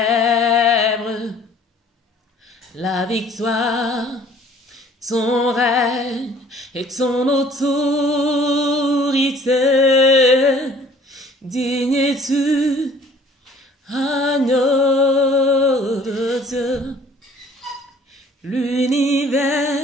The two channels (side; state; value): both; normal; correlation 0.54